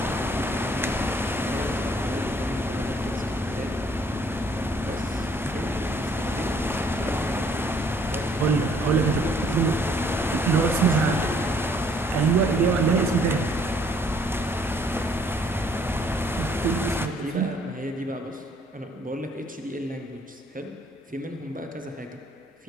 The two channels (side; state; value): both; normal; correlation 0.62